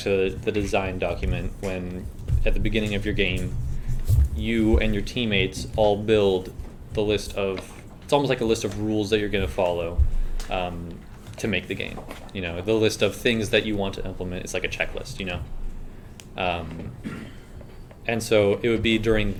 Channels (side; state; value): both; identical; correlation 1.00